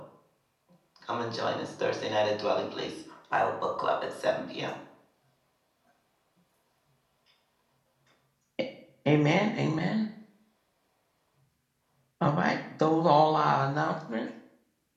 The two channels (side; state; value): both; identical; correlation 1.00